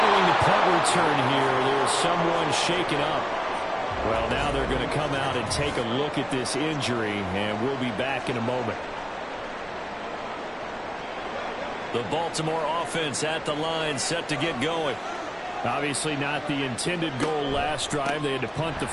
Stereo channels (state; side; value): identical; both; correlation 1.00